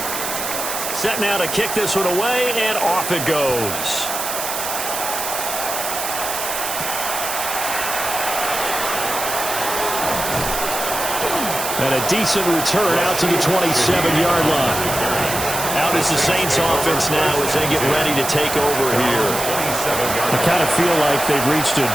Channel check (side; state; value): right; noise; hiss, 4 dB below the sound